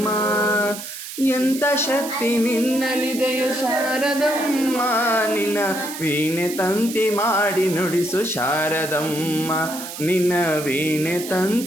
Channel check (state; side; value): noise; right; hiss, 10 dB below the sound